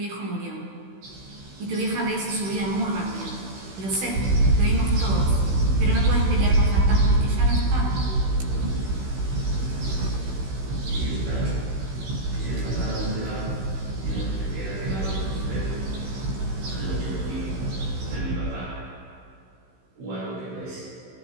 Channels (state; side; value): late; left; 16 ms